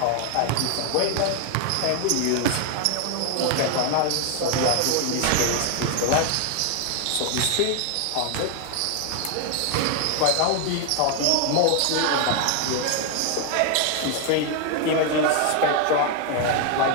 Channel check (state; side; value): different; both; correlation 0.00